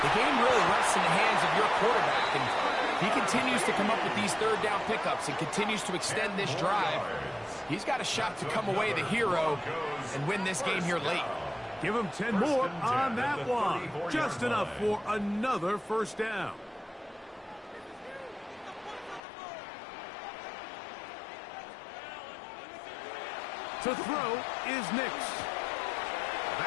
the game really rests in the hands of your quarterback. And he continues to come up with these third down pickups and continues to extend this drive. He's got a shot to come away the hero and win this game here late. Give him 10 more on that one. Just enough for another first down. To throw is Nix.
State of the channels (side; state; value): right; drops out; at 19.2 s